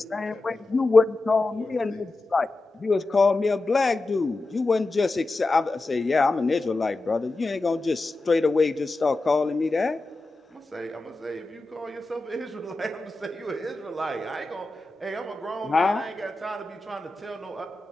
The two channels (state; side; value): quieter; right; 3.1 dB